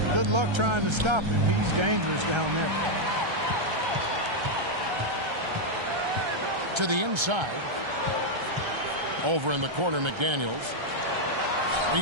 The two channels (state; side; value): late; left; 1.3 ms